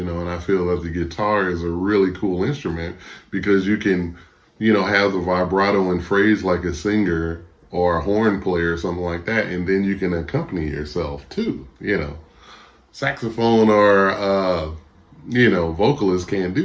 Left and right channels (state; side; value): identical; both; correlation 1.00